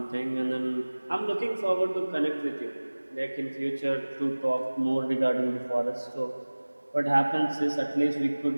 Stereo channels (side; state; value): both; inverted; correlation -1.00